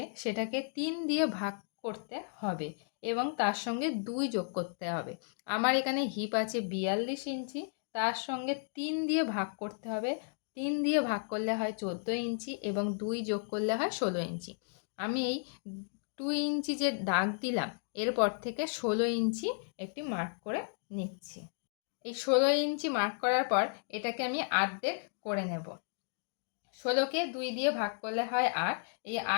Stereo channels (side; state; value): right; silent; digital silence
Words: সেটাকে 3 দিয়ে ভাগ করতে হবে এবং তার সঙ্গে 2 যোগ করতে হবে। আমার এখানে হিপ আছে 42 ইঞ্চি, তার সঙ্গে 3 দিয়ে ভাগ করতে হবে। 3 দিয়ে ভাগ করলে হয় 14 ইঞ্চি এবং 2 যোগ করলে হয় 16 ইঞ্চি। আমি এই 2 ইঞ্চি যে দাগ দিলাম এরপর থেকে 16 ইঞ্চি একটি মার্ক করে নিচ্ছি। এই 16 ইঞ্চি মার্ক করার পর এটাকে আমি অর্ধেক করে নেব। 16কে 2 দিয়ে ভাগ করলে হয় 8। এই